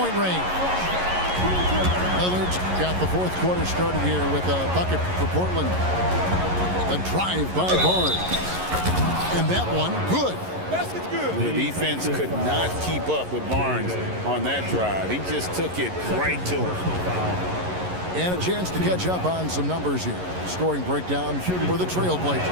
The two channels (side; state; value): left; late; 11 ms